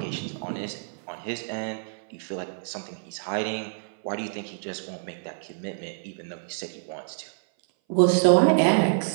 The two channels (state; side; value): silent; left; 58 dB below the other